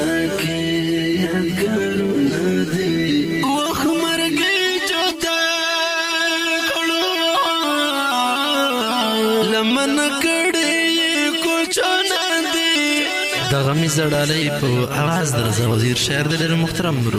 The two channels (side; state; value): both; identical; correlation 1.00